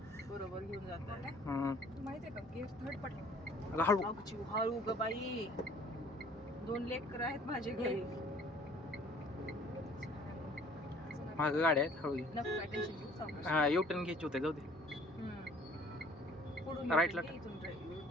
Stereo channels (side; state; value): both; normal; correlation 0.54